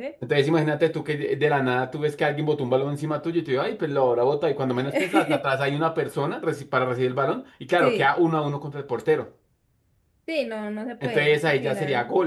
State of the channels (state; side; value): identical; both; correlation 1.00